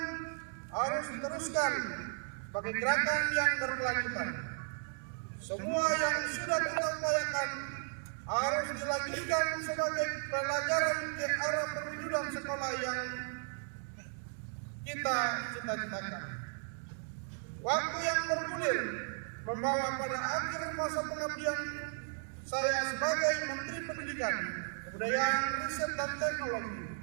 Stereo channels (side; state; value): left; silent; 54 dB below the other